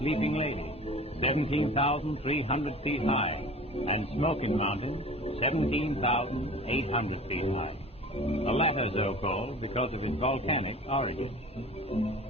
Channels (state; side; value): normal; both; correlation 0.41